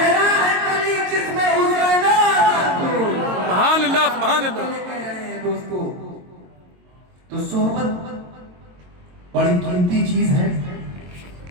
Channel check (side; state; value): left; late; 22 ms